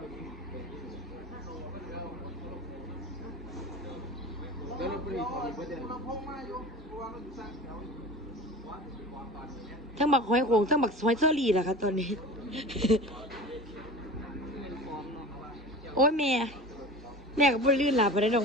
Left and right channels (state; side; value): normal; both; correlation 0.35